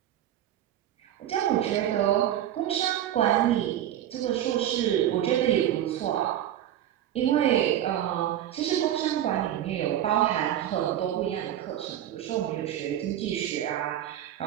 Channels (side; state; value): left; quieter; 11.6 dB